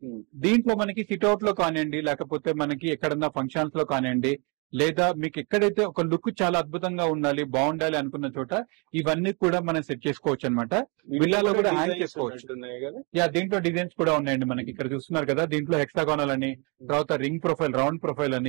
దీంట్లో మనకి సిట్అవుట్ లో కానివ్వండి, లేకపోతే మనకి ఎక్కడన్నా ఫంక్షన్స్ లో కానివ్వండి, లేదా మీకు ఎక్కడైతే ఒక లుక్ చాలా అద్భుతంగా ఉండాలి, బాగుండాలి అనుకున్న చోట ఇవన్నీ కూడా మనం సెట్ చేసుకోవచ్చు అనమాట. విల్లాలో కూడా హ్యాంగ్ చేసుకోవచ్చు. యా దీంట్లో డిజైన్స్ కూడా ఉన్నాయండి మనకి. ఇక్కడ చూస్తున్నారు కదా, దీంట్లో హెక్సాగోనల్ అని, తర్వాత రింగ్ ప్రొఫైల్, రౌండ్ ప్రొఫైల్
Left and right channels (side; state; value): left; quieter; 33.0 dB